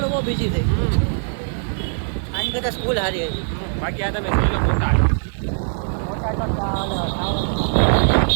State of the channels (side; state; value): left; silent; 58 dB below the other